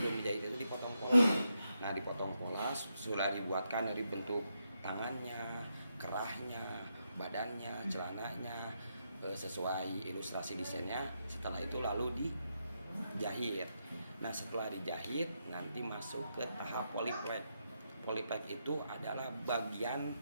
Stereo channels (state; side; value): inverted; both; correlation -0.82